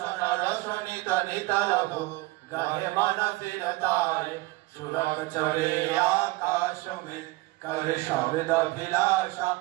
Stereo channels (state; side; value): quieter; left; 21.0 dB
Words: रसनित नित रहो गहे मन सिरताए सुरग चढ़े आकाश में करे शब्द अभिलाषा